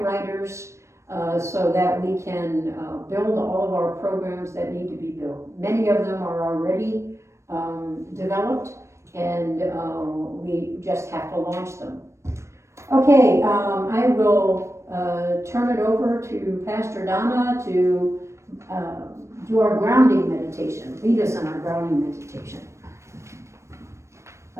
writers so that we can build all of our programs that need to be built. Many of them are already developed, and we just have to launch them. Okay, I will turn it over to Pastor Donna to do our grounding meditation. Lead us in our grounding meditation.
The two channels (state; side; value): late; left; 0.13 ms